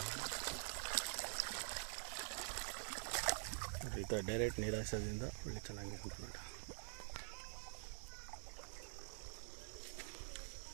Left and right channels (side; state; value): left; silent; digital silence